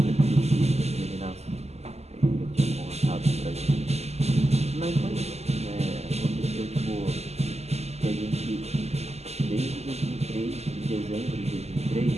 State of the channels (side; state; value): left; late; 0.31 ms